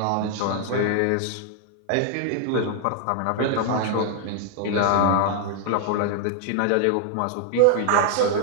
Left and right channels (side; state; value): both; different; correlation -0.01